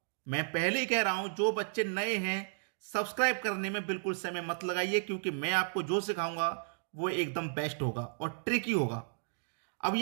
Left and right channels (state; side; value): silent; left; digital silence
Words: मैं पहले ही कह रहा हूं, जो बच्चे नए हैं सब्सक्राइब करने में बिल्कुल समय मत लगाइए, क्योंकि मैं आपको जो सिखाऊंगा वो एकदम बेस्ट होगा और ट्रिकी होगा। अब